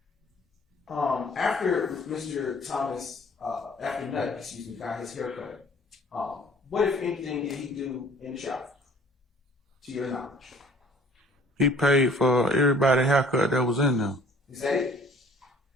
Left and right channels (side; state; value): both; normal; correlation 0.53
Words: After Mr. Thomas, after Nutt, excuse me, got his haircut, what, if anything, did he do in the shop, to your knowledge? He paid for everybody's haircut that was in there. Is that it?